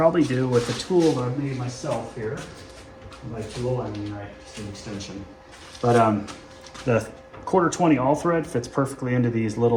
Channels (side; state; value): both; identical; correlation 1.00